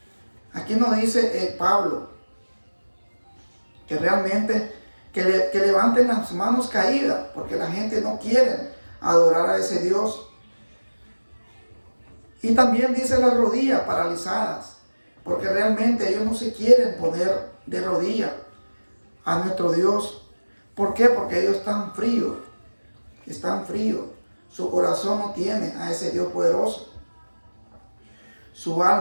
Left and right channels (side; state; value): both; inverted; correlation -1.00